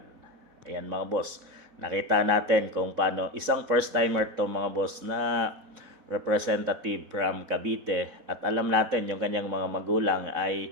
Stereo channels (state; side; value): late; left; 4.0 ms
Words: Ayan mga boss, nakita natin kung paano isang first timer to mga boss na representative from Cavite at alam natin yung kanyang mga magulang ay